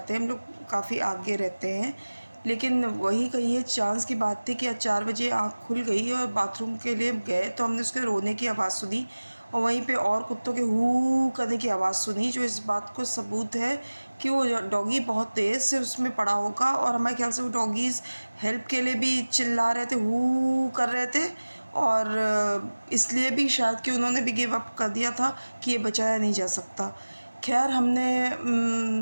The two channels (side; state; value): both; inverted; correlation -1.00